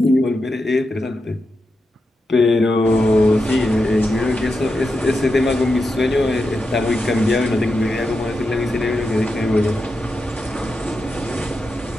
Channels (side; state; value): both; normal; correlation 0.88